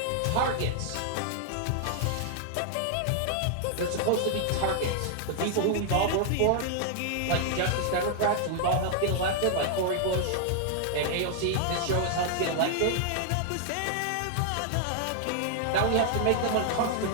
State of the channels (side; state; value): both; different; correlation -0.01